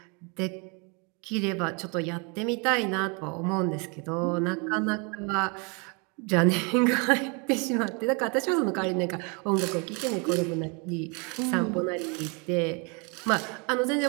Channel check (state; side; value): quieter; left; 32.6 dB